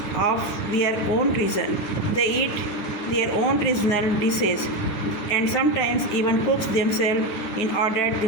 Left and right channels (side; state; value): right; late; 9.0 ms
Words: of their own region. They eat their own regional dishes and sometimes even cooks themselves in order